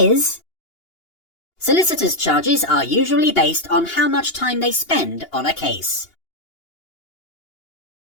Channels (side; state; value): right; late; 2.8 ms